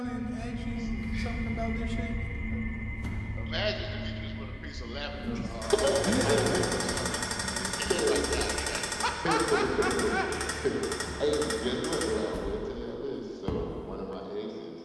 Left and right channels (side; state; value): both; identical; correlation 1.00